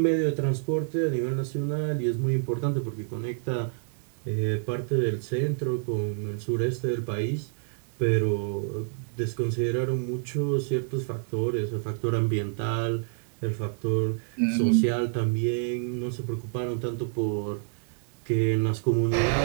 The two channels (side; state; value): left; silent; digital silence